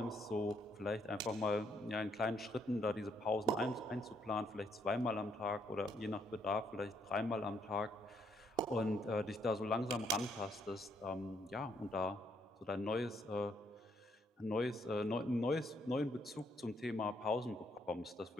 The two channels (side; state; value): both; normal; correlation 0.72